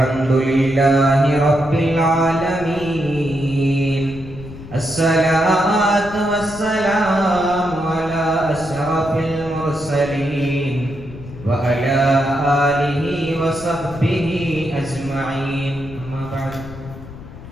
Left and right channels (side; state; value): left; noise; rumble, 15 dB below the sound